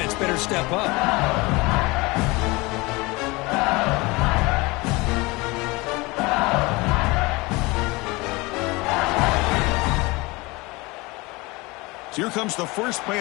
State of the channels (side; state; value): right; quieter; 23.9 dB